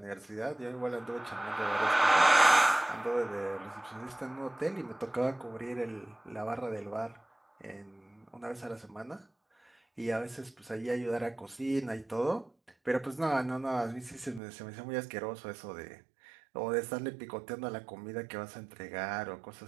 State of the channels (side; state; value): left; drops out; at 14.4 s